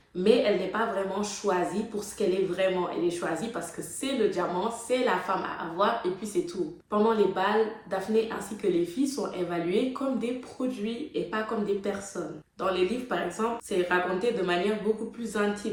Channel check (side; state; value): both; identical; correlation 1.00